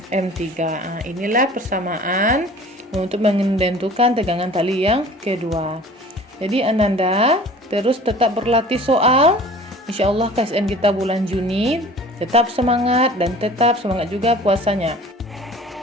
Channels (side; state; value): both; normal; correlation 0.45